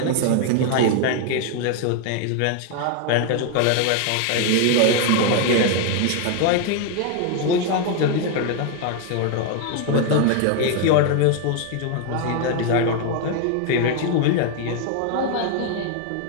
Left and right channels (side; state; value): both; different; correlation 0.01